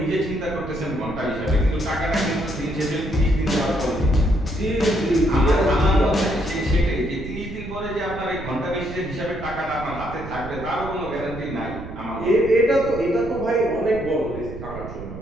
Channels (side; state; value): right; noise; rumble, 11 dB below the sound